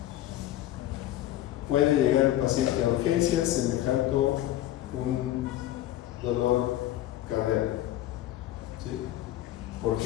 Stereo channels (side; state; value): right; quieter; 13.7 dB